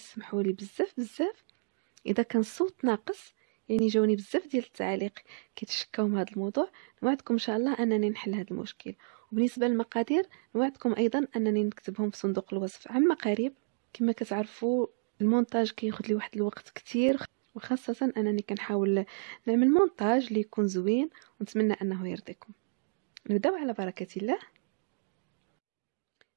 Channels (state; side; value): silent; left; digital silence